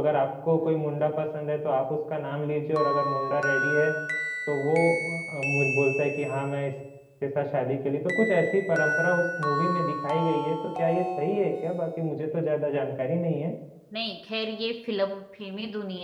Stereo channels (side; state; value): both; identical; correlation 1.00